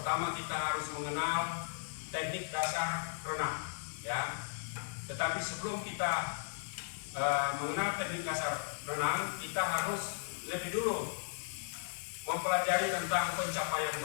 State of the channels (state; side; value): silent; right; digital silence